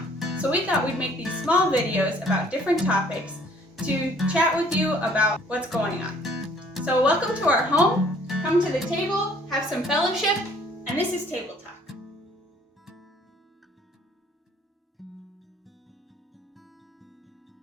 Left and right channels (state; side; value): normal; both; correlation 0.58